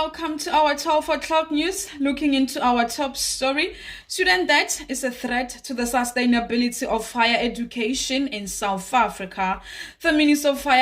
to our 12 o'clock news. Looking into our top story, student debt is a threat to the sustainability of higher education in South Africa. The Minister of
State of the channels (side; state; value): both; identical; correlation 1.00